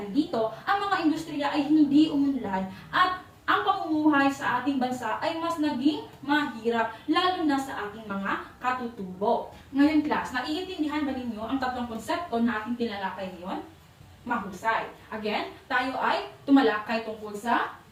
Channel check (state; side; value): identical; both; correlation 1.00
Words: dito, ang mga industriya ay hindi umunlad at ang pamumuhay sa ating bansa ay mas naging mahirap, lalo na sa ating mga katutubo. Ngayon class, naiintindihan ba ninyo ang tatlong konsepto na ating tinalakay ngayon? Mahusay. Again, tayo ay tumalakay tungkol sa